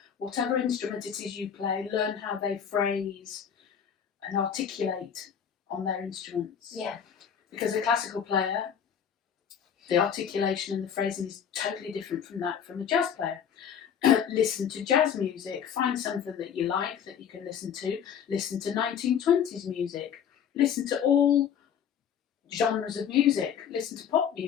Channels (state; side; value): quieter; right; 8.1 dB